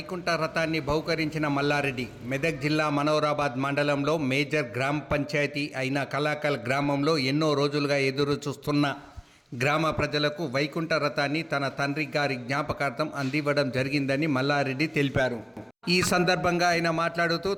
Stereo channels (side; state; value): both; identical; correlation 1.00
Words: రథాన్ని బహుకరించిన మల్లారెడ్డి మెదక్ జిల్లా మనోరాబాద్ మండలంలో మేజర్ గ్రామ పంచాయతీ అయిన కలాకల్ గ్రామంలో ఎన్నో రోజులుగా ఎదురు చూస్తున్న గ్రామ ప్రజలకు వైకుంఠ రథాన్ని తన తండ్రి గారి జ్ఞాపకార్థం అందివ్వడం జరిగిందని మల్లారెడ్డి తెలిపారు. ఈ సందర్భంగా ఆయన మాట్లాడుతూ